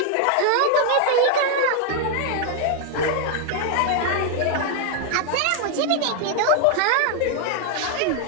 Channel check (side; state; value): both; different; correlation 0.00